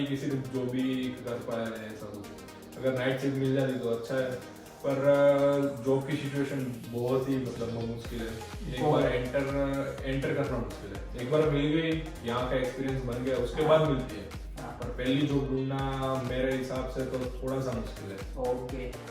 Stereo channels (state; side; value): identical; both; correlation 1.00